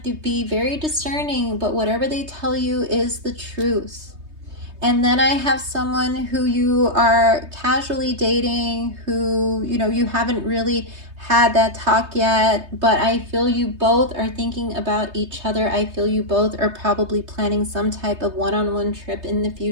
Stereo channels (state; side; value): late; left; 3.2 ms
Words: to be very discerning, but whatever they tell you is the truth. And then I have someone who you are casually dating, who, you know, you haven't really had that talk yet, but I feel you both are thinking about each other. I feel you both are probably planning some type of one-on-one trip in the